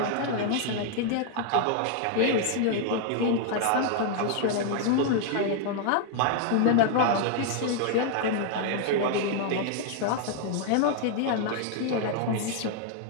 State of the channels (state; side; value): different; both; correlation 0.00